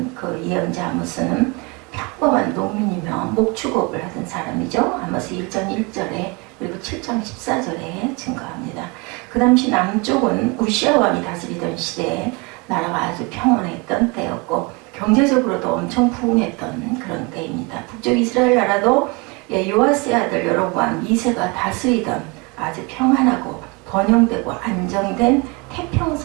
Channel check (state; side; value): quieter; left; 27.8 dB